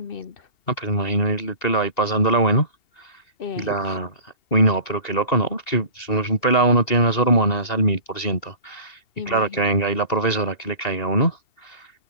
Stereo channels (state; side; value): late; right; 2.7 ms